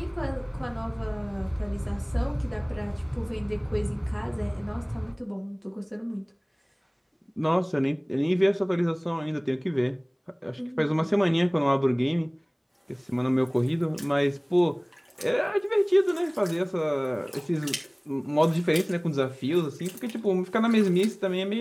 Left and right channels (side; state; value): both; identical; correlation 1.00